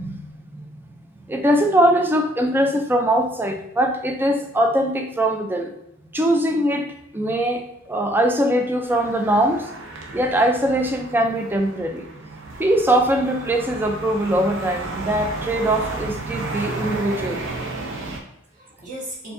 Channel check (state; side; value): normal; both; correlation 0.63